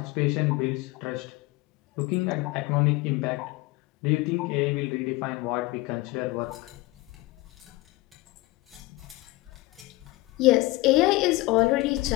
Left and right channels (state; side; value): quieter; right; 20.6 dB